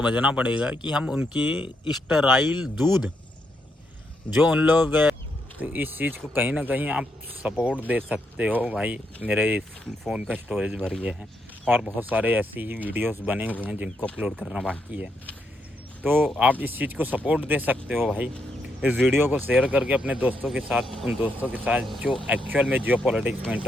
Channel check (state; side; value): normal; both; correlation 0.79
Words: पड़ेगा कि हम उनकी स्टेराइल दूध जो उन लोग, तो इस चीज़ को कहीं ना कहीं आप सपोर्ट दे सकते हो भाई। मेरे फ़ोन का स्टोरेज भर गया है और बहुत सारे ऐसे ही वीडियोस बने हुए हैं जिनको अपलोड करना बाकी है, तो आप इस चीज़ को सपोर्ट दे सकते हो भाई। इस वीडियो को शेयर करके अपने दोस्तों के साथ, उन दोस्तों के साथ जो एक्चुअल में जियो पॉलिटिक्स में